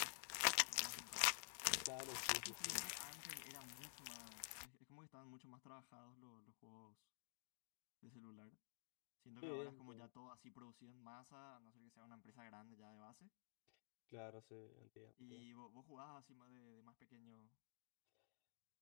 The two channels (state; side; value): silent; right; digital silence